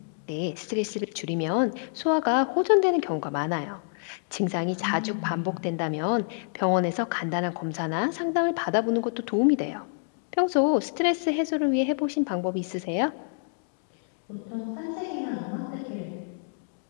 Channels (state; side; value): silent; right; digital silence